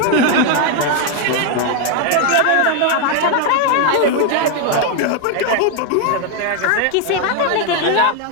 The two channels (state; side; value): different; both; correlation 0.01